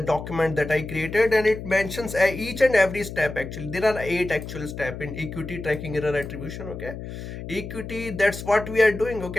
document that I created, and it mentions each and every step. Actually, there are 8 actual step in equity tracking error attribution. Okay, equity, that's what we are doing.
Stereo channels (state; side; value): noise; left; hum, 9 dB below the sound